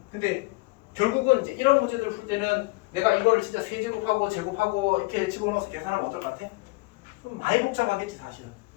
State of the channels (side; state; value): right; quieter; 24.2 dB